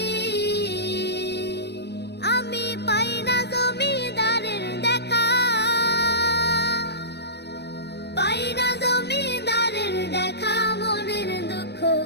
আমি পাই না জমিদারের দেখা, পাই না জমিদারের দেখা, মনের দুঃখ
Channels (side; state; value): right; late; 0.49 ms